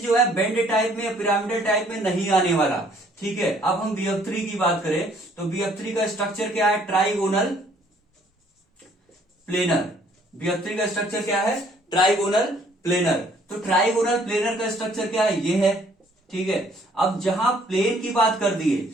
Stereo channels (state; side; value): normal; both; correlation 0.61